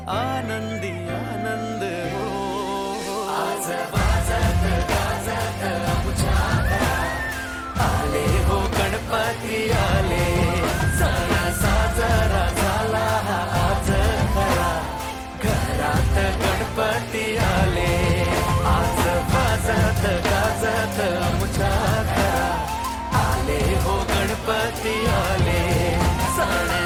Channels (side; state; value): both; identical; correlation 1.00